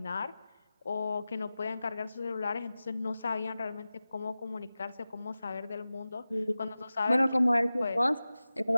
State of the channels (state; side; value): inverted; both; correlation -0.96